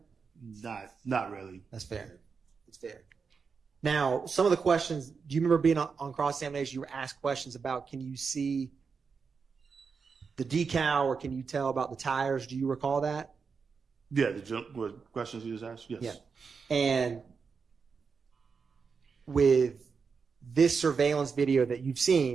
Not really. That's fair. It's fair. Now, some of the questions, do you remember being on cross-examination, you were asked questions about, can you see the decal or can you tell about the tires? Do you recall that? Yeah, what questions you just asked? Yes. Yeah. And with this surveillance video that you've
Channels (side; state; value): left; quieter; 5.4 dB